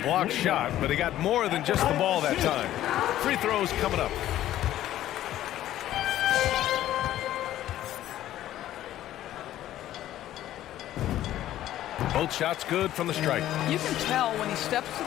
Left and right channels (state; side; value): quieter; right; 13.2 dB